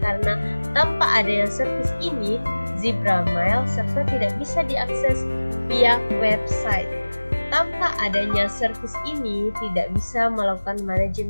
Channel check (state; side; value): inverted; both; correlation -1.00